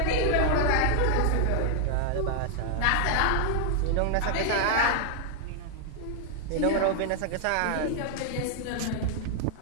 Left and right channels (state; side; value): different; both; correlation 0.00